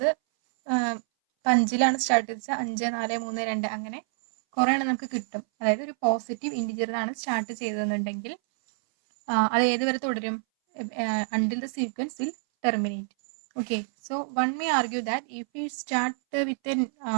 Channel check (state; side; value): silent; left; 60 dB below the other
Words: 5ലാണ് start ചെയ്തത്, 5 4 3 2 അങ്ങനെ കുറേ എണ്ണം നമുക്ക് കിട്ടും. അതായത് ഒരു പോസിറ്റീവ് ഇൻറ്റിജറിലാണ് സ്റ്റാർട്ട് ചെയ്തതെന്നുണ്ടെങ്കിൽ അത് ഏത് വരെ തുടരും? until the sequence will terminate. Okay, so one may argue that if we start with a